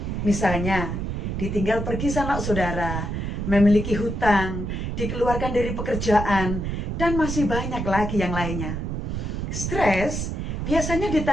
Misalnya, ditinggal pergi sanak saudara, memiliki hutang, dikeluarkan dari pekerjaan, dan masih banyak lagi yang lainnya. Stres biasanya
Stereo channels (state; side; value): noise; right; rumble, 3 dB below the sound